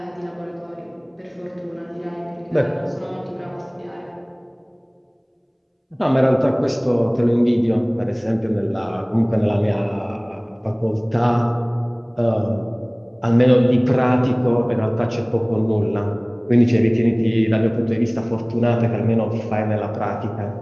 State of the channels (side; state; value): both; identical; correlation 1.00